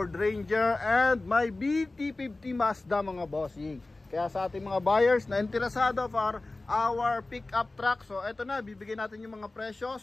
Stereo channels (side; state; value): right; quieter; 3.1 dB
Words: Ranger, and may BT50 Mazda mga bossing. Kaya sa ating mga buyers na interesado for our pickup truck, so eto na, bibigyan natin yung mga presyo.